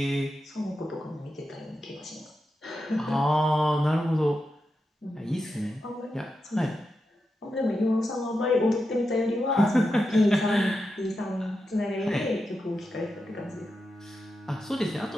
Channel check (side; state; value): both; normal; correlation 0.88